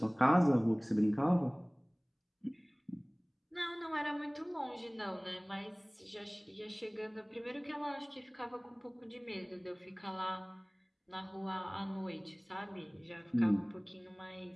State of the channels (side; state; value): both; identical; correlation 1.00